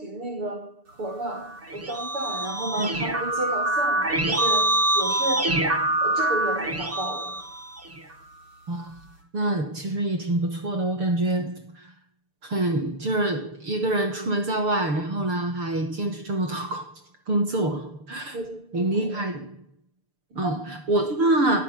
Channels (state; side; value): late; left; 6.8 ms